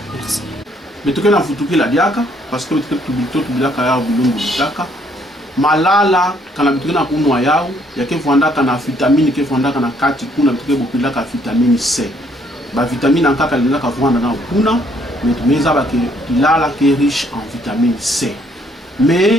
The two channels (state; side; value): normal; both; correlation 0.66